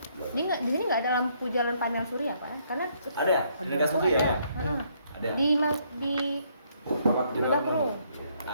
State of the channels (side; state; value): both; inverted; correlation -0.70